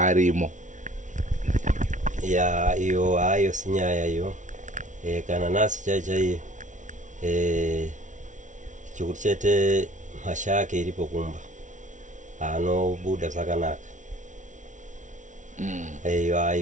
Iyo hayo sinyaya iyo. Kana nasi chaiye chikuti chete mhasha yake iripo kumba anobuda zvakanaka.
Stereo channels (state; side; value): late; left; 0.37 ms